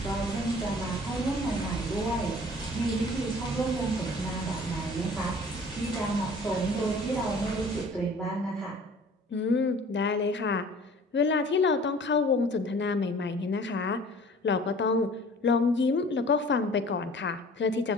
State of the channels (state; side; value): normal; both; correlation 0.48